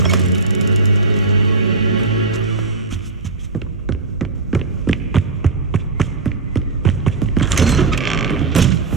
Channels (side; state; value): left; quieter; 3.9 dB